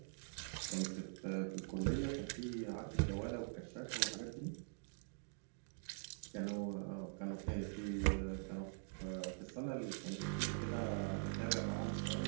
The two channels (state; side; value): silent; left; digital silence